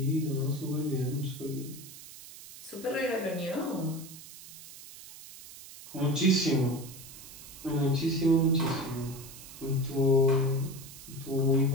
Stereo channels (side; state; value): right; noise; hiss, 16 dB below the sound